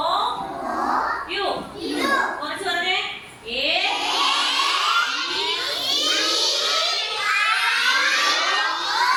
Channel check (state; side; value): identical; both; correlation 1.00